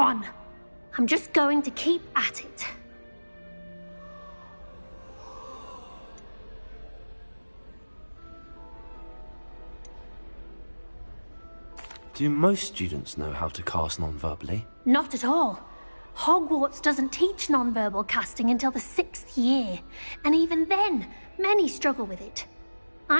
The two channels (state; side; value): inverted; both; correlation -1.00